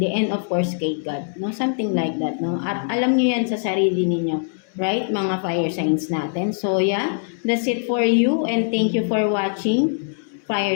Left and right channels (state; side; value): silent; right; 64 dB below the other